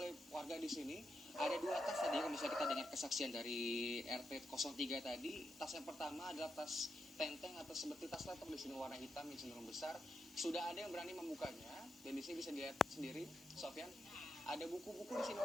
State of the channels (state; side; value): normal; both; correlation 0.84